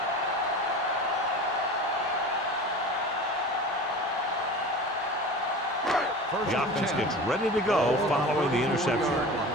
The offense gets ready to go following the interception.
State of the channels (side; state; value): both; normal; correlation 0.34